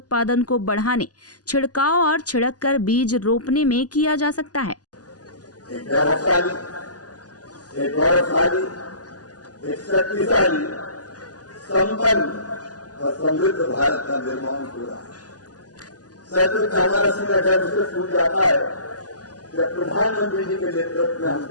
को बढ़ाने, छिड़काव और छिड़क कर बीज रोपने में किया जा सकता है। एक गौरवशाली, एक शक्तिशाली, संपन्न और समृद्ध भारत का निर्माण हो रहा है। सच हमारा संगठन उसे छूट जाता है जब प्रधानमंत्री जी के नेतृत्व में हम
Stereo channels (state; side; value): late; right; 0.68 ms